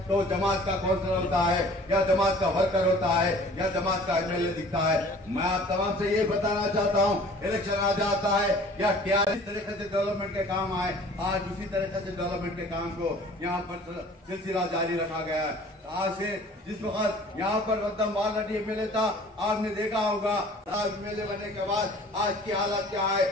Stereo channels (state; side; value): normal; both; correlation 0.49